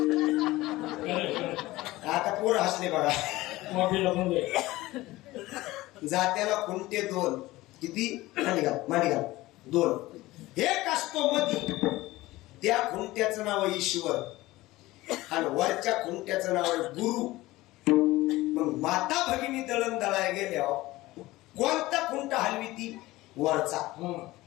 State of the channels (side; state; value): right; quieter; 18.5 dB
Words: आता पोरं हसले बघा. जात्याला खुंटे 2. किती? मांडी घाल 2. एक असतो मधी, त्या खुंट्याचं नाव आहे ईश्वर आणि वरच्या खुंट्याचं नाव आहे गुरु. मग माता भगिनी दळण दळाय गेल्यावर कोणता खुंटा हलवी ती? वरचा.